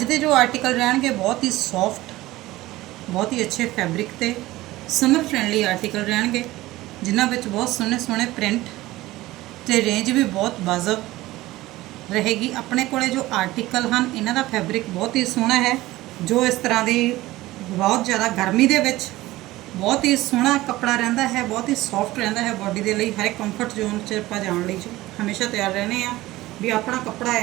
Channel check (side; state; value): left; quieter; 17.7 dB